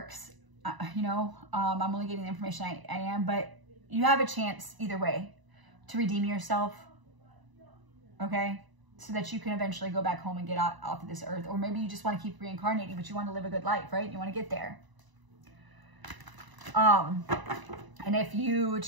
You know, I'm only getting the information I am, but you have a chance either way to redeem yourself. Okay, so that you can eventually go back home and get off of this earth. Or maybe you just want to keep reincarnating, but you want to live a good life, right? You want to get there. And if you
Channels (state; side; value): late; left; 1.0 ms